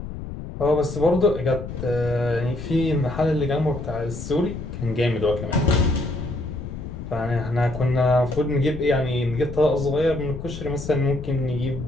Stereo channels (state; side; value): noise; left; rumble, 9 dB below the sound